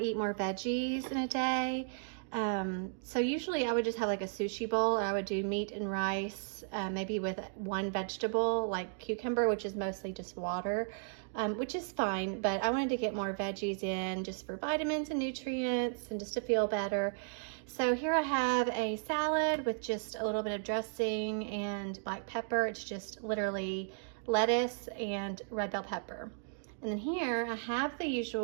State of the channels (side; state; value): left; silent; digital silence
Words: more veggies in a day. So usually I would just have like a sushi bowl, or I would do meat and rice, maybe with one vegetable like cucumber, which is mostly just water, which is fine, but I wanted to get more veggies in just for vitamins and nutrients and just to feel better. So here I have a salad with just a little bit of dressing and black pepper. It's just literally lettuce and red bell pepper. And then here I have the